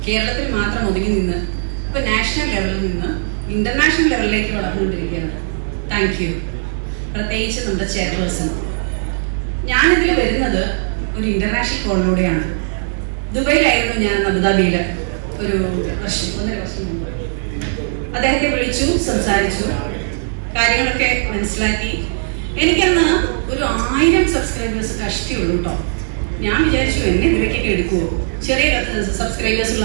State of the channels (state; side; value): silent; left; digital silence